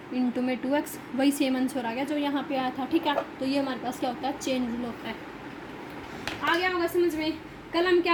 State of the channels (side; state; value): both; identical; correlation 1.00